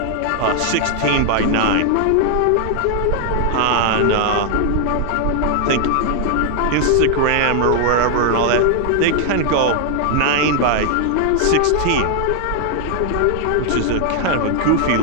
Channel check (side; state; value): both; different; correlation 0.00